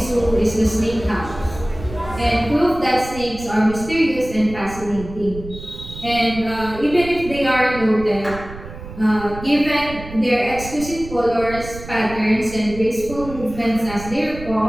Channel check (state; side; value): noise; right; rumble, 13 dB below the sound